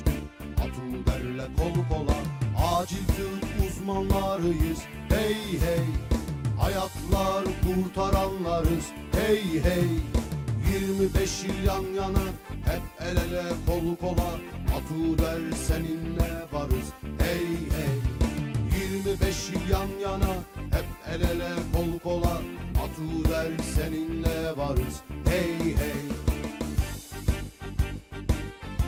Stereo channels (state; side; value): identical; both; correlation 1.00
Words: Atuder'le kol kola. Acil tıp uzmanlarıyız, hey hey. Hayatlar kurtaranlarız, hey hey. 25 yıl yan yana, hep el ele kol kola. Atuder seninle varız, hey hey. 25 yıl yan yana, hep el ele kol kola. Atuder seninle varız, hey hey.